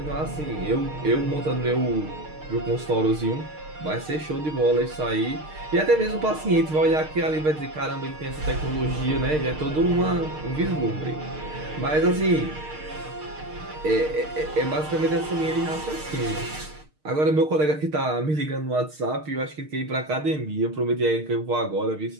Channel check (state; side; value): late; left; 6.5 ms